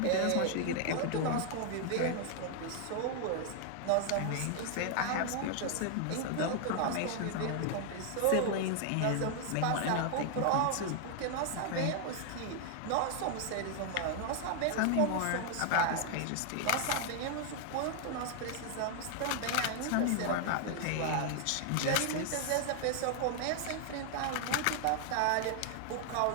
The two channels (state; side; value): different; both; correlation 0.00